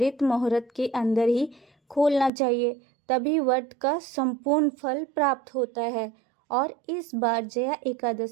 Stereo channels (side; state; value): left; drops out; at 2.3 s